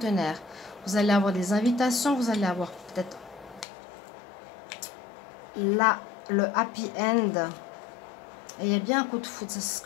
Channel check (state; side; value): drops out; right; at 3.7 s